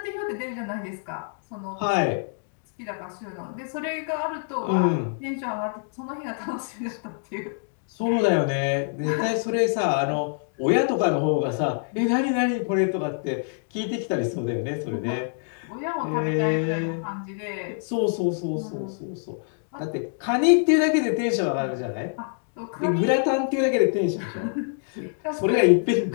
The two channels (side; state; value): right; silent; digital silence